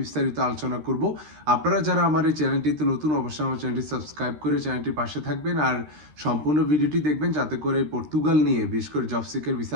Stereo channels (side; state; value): left; late; 13 ms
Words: বিস্তারিত আলোচনা করব। আপনারা যারা আমার এই চ্যানেলটিতে নতুন, অবশ্যই আমার চ্যানেলটি সাবস্ক্রাইব করে চ্যানেলটির পাশে থাকবেন আর সম্পূর্ণ ভিডিওটি দেখবেন, যাতে করে পর্তুগাল নিয়ে বিশেষ করে জব সিকার ভিসা